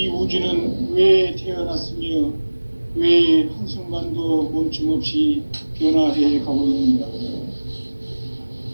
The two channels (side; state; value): both; inverted; correlation -1.00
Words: 우주는 왜 태어났으며 왜 한순간도 멈춤 없이 변화해 가고 있는가?